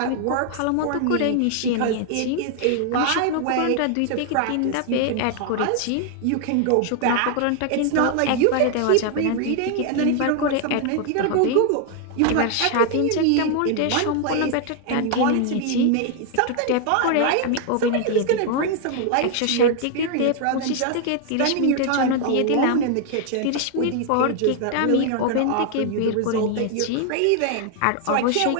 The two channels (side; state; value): both; different; correlation 0.00